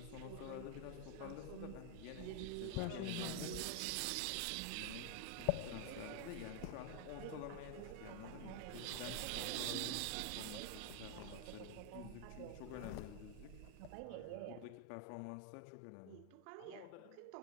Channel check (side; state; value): both; different; correlation 0.00